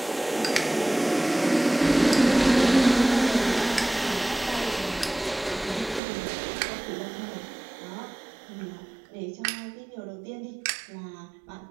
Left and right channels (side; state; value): left; drops out; at 6.0 s